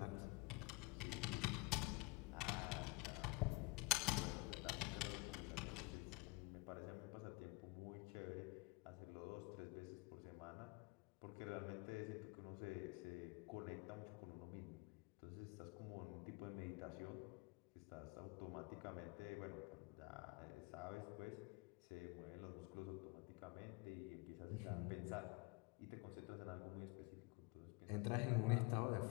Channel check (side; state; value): right; quieter; 25.6 dB